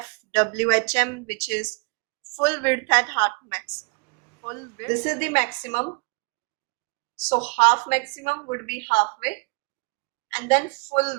which is full width at half maximum. Full width. This is the maximum. So half maximum would be halfway, and then full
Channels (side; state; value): left; quieter; 32.4 dB